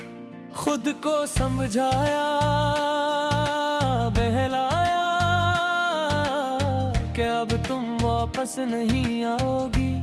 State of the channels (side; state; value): both; identical; correlation 1.00